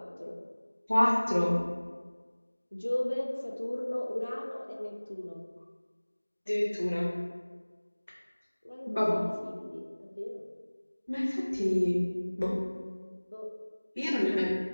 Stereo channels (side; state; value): both; inverted; correlation -1.00